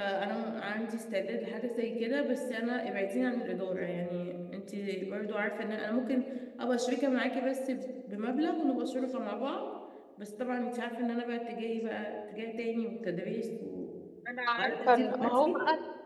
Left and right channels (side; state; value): both; identical; correlation 1.00